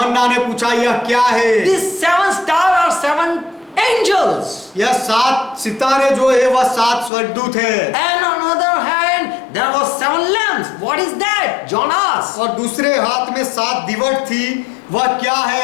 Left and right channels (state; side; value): drops out; right; at 7.1 s